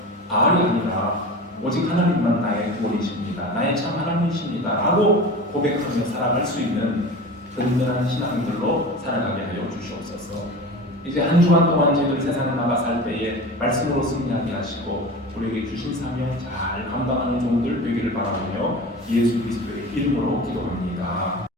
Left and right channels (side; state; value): both; normal; correlation 0.33